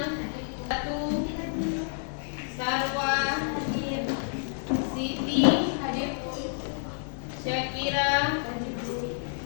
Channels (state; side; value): silent; right; 58 dB below the other